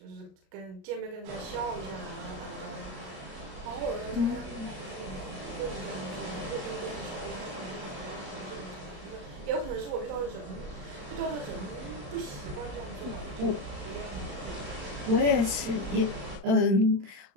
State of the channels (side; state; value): left; late; 36 ms